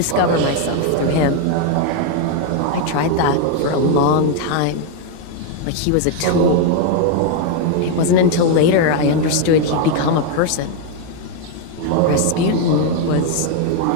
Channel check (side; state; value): both; different; correlation 0.01